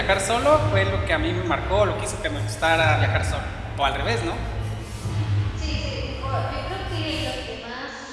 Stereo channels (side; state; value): both; identical; correlation 1.00